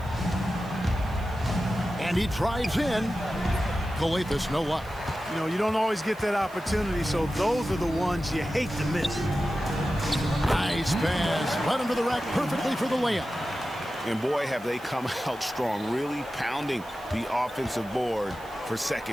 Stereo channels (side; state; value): right; noise; hiss, 24 dB below the sound